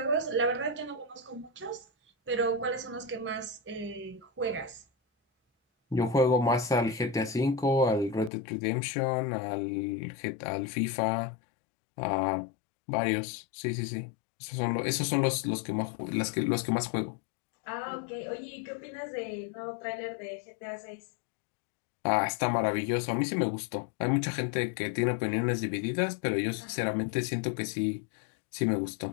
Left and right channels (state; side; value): drops out; right; at 8.3 s